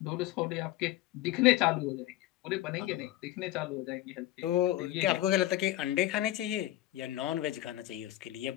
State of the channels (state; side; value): quieter; right; 15.1 dB